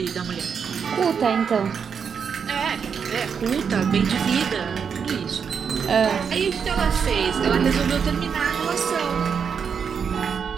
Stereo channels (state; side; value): quieter; left; 6.7 dB